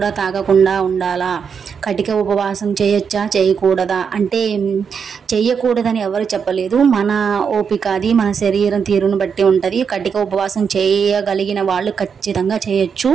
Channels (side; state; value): left; quieter; 6.5 dB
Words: తాగకుండా ఉండాలా, కటిక ఉపవాసం చేయొచ్చా చేయకూడదా అంటే చెయ్యకూడదని ఎవరు చెప్పలేదు. మన ఓపిక అది, మన శరీరం తీరును బట్టి ఉంటుంది. కటిక ఉపవాసం చేయగలిగిన వాళ్ళు ఖచ్చితంగా చేయొచ్చు.